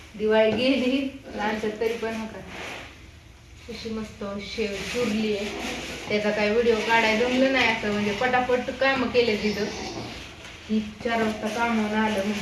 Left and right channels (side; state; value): both; identical; correlation 1.00